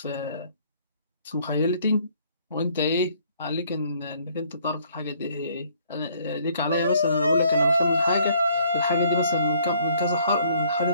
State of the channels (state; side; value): inverted; both; correlation -0.62